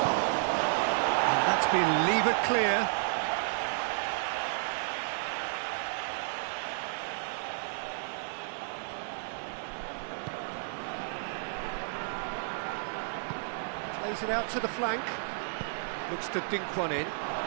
And that's been levered clear. Plays it out to the flank. Looks to dink one in.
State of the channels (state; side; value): silent; left; digital silence